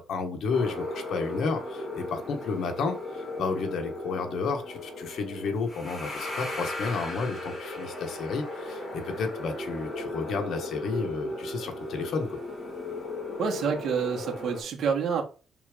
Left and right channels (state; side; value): normal; both; correlation 0.67